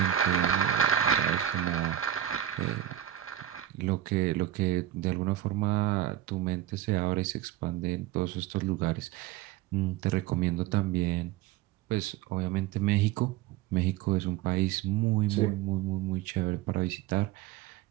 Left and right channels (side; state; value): left; quieter; 12.4 dB